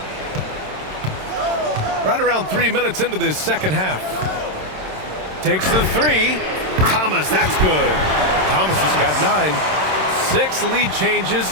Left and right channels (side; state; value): left; late; 27 ms